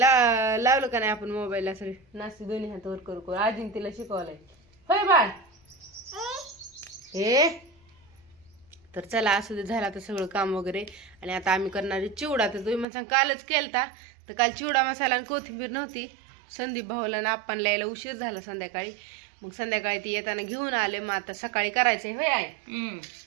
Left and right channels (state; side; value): drops out; left; at 12.9 s